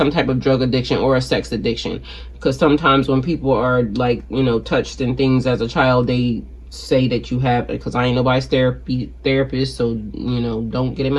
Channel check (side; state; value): both; identical; correlation 1.00